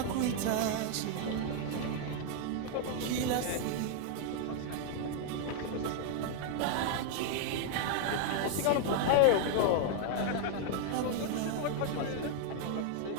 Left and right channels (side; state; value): both; different; correlation 0.00